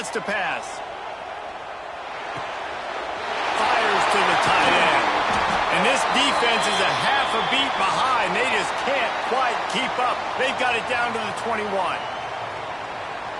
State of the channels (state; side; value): identical; both; correlation 1.00